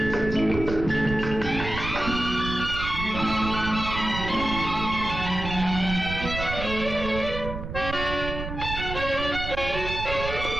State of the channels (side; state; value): right; noise; rumble, 7 dB below the sound